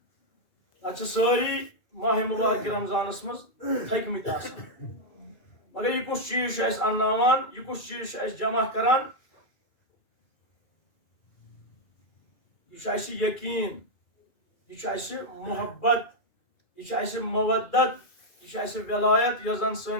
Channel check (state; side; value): late; right; 2.3 ms